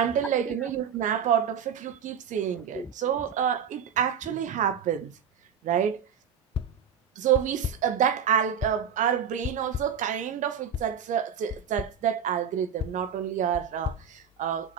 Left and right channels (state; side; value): quieter; left; 7.4 dB